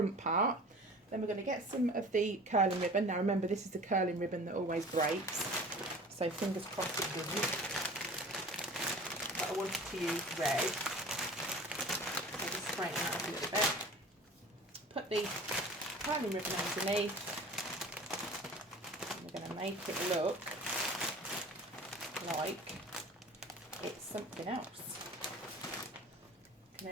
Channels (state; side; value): normal; both; correlation 0.42